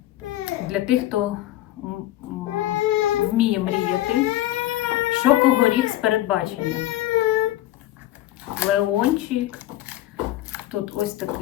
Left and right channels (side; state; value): right; quieter; 14.9 dB